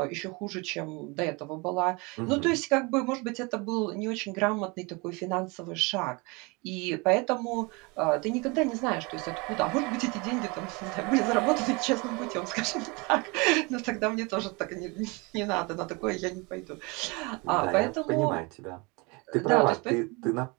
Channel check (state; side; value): quieter; left; 27.8 dB